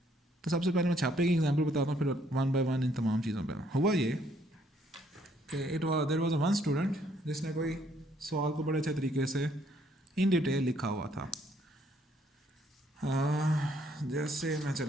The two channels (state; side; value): normal; both; correlation 0.67